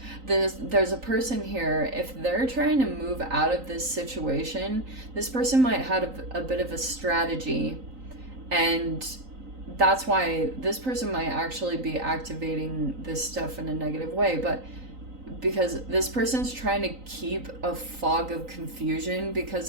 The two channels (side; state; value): left; late; 3.9 ms